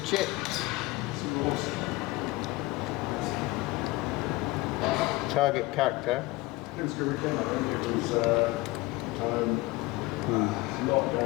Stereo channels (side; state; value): right; quieter; 20.7 dB